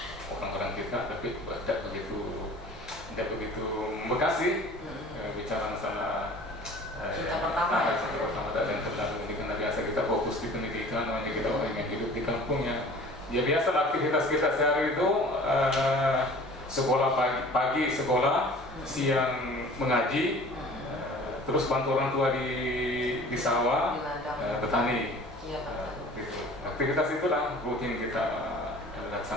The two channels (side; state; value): both; normal; correlation 0.45